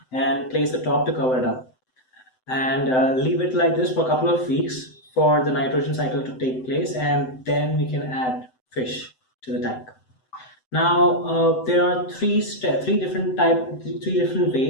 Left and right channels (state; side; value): late; right; 7.9 ms